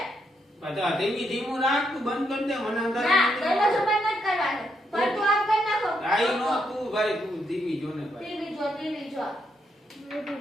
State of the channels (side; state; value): both; normal; correlation 0.78